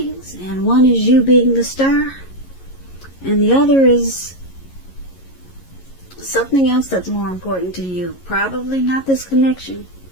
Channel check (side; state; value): right; late; 11 ms